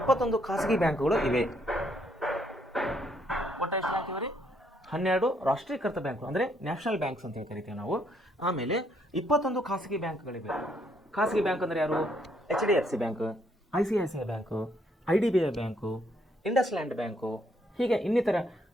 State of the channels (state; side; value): normal; both; correlation 0.71